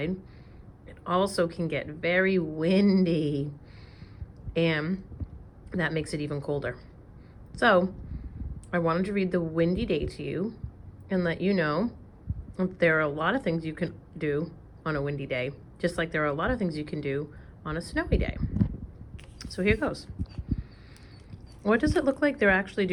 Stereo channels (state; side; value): identical; both; correlation 1.00